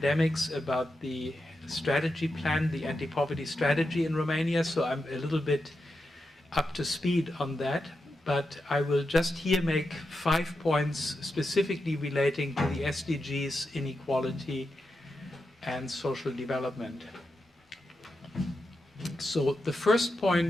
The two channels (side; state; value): both; normal; correlation 0.88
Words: about the strategy plan, the anti-poverty strategy in Romania, so I'm a little bit up to speed on that. But I will just here make 5 points specifically relating to the SDGs, inequality, and social development. So the first